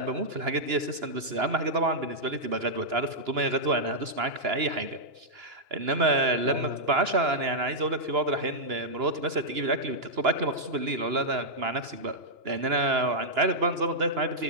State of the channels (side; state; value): left; late; 2.9 ms